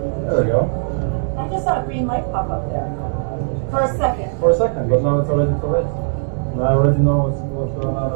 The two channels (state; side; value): silent; left; digital silence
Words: there we go. I just saw a green light pop up there. For a second. For a second, but now it's already too late. Now I already know what's going on